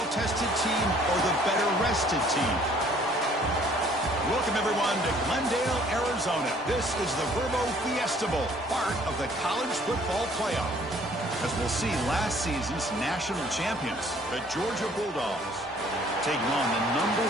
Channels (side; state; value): both; normal; correlation 0.58